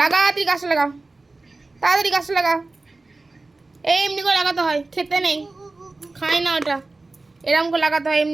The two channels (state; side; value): quieter; left; 3.3 dB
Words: লাগা তুই গাছটা লাগা, তাড়াতাড়ি গাছটা লাগা। এই এমনি করে লাগাতে হয়, খেতে নেই, খাই না ওটা। এরকম করে লাগাতে হয়,